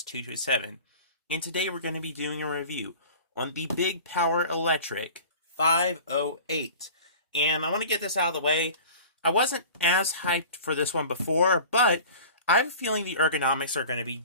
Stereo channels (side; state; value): both; inverted; correlation -0.40